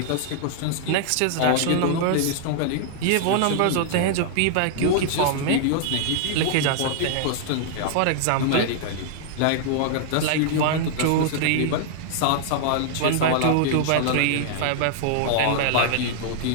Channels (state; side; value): different; both; correlation -0.01